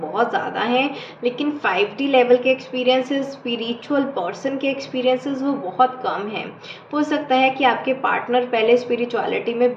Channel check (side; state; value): both; identical; correlation 1.00